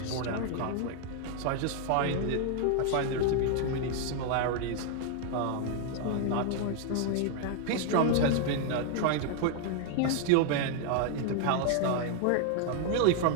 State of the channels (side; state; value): both; different; correlation 0.00